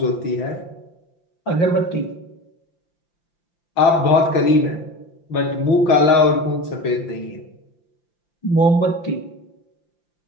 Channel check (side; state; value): right; late; 5.9 ms